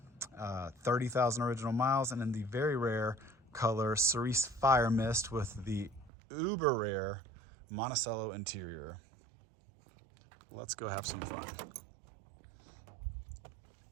30,000 original miles, and in the very rare color Cerise Fire Mist with the uber rare Monticello interior. Let's go have some fun.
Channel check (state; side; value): drops out; left; at 6.1 s